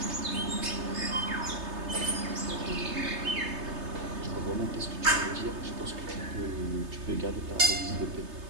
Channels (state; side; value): late; left; 3.3 ms